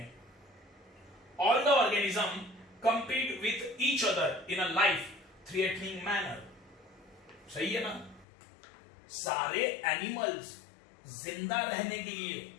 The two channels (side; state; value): right; drops out; at 8.2 s